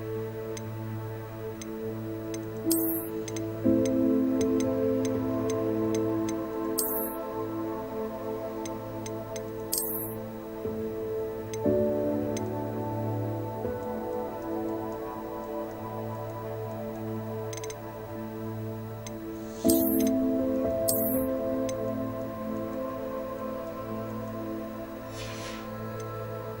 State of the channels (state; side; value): identical; both; correlation 1.00